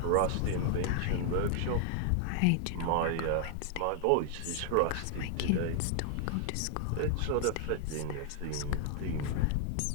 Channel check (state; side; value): different; both; correlation 0.00